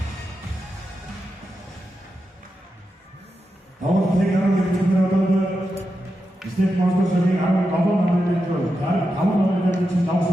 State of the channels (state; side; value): normal; both; correlation 0.88